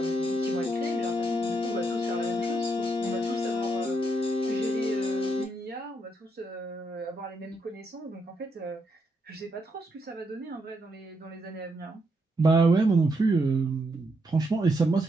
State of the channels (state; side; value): normal; both; correlation 0.78